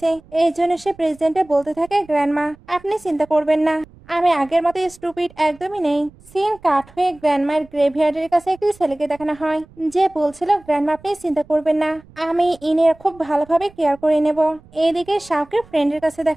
এই জন্য সে প্রেজেন্টে বলতে থাকে গ্র্যান্ডমা আপনি চিন্তা করবেন না, আমি আগের মতো স্টুপিড একদমই নেই। সিন কাট হয়ে গ্র্যান্ডমায়ের গ্রেভইয়ার্ডের কাছে একটি ছেলেকে দেখানো হয়, যে বলছিল গ্র্যান্ডমা আপনি চিন্তা করবেন না, আমি ইনের খুব ভালোভাবে কেয়ার করে নেব। এইদিকে শাওকে ফ্রেন্ডের কাছে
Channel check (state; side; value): noise; right; rumble, 25 dB below the sound